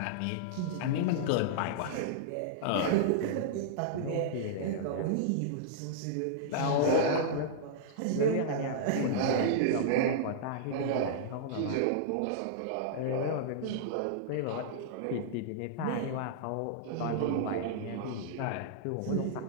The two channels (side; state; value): both; different; correlation -0.02